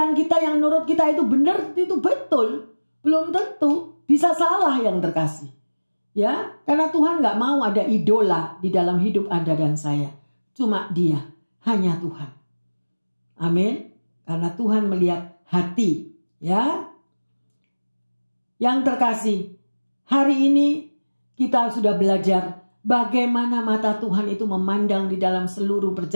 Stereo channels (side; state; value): both; inverted; correlation -1.00